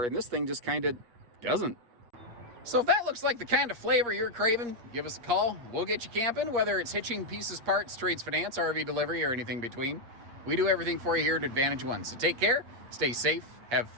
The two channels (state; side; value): late; left; 8.5 ms